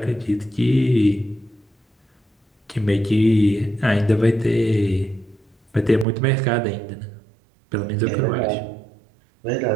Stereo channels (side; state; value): left; drops out; at 6.1 s